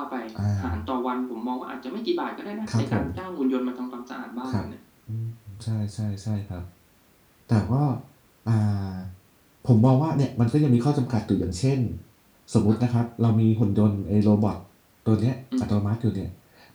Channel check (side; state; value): both; identical; correlation 1.00